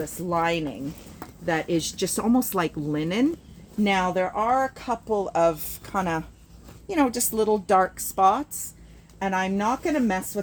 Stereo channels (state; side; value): identical; both; correlation 1.00